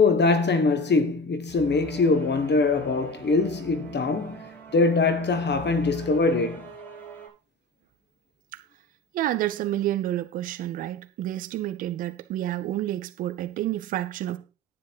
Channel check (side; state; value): both; normal; correlation 0.32